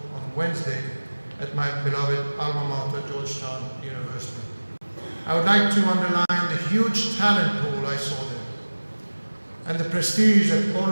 on Wednesday at my beloved alma mater, Georgetown University. I would like to underline the huge talent pool I saw there, and the prestige that all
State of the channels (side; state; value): both; inverted; correlation -1.00